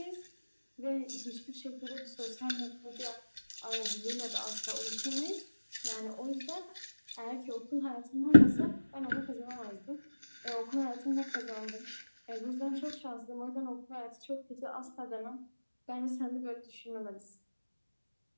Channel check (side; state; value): both; inverted; correlation -1.00